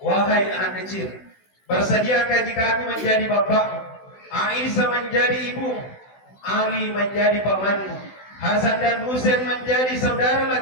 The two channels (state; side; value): late; right; 16 ms